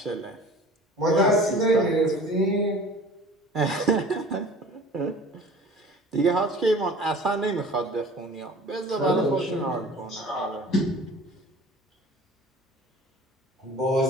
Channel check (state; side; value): normal; both; correlation 0.44